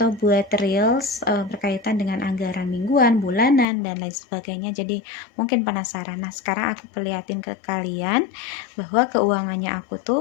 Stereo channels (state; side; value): drops out; right; at 3.7 s